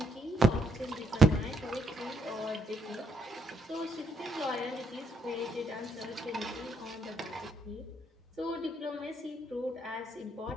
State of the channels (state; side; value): normal; both; correlation 0.75